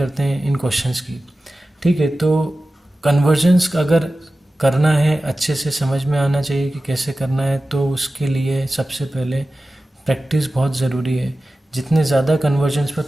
हैं इन क्वेश्चंस की, ठीक है। तो कन्वर्जन्स अगर करना है अच्छे से समझ में आना चाहिए कि कैसे करना है, तो उसके लिए सबसे पहले प्रैक्टिस बहुत ज़रूरी है। जितने ज़्यादा कन्वर्जन्स पर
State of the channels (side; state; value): both; normal; correlation 0.95